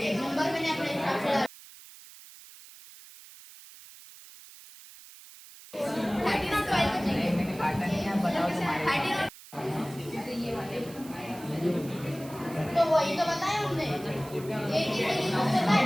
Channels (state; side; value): noise; right; hiss, 19 dB below the sound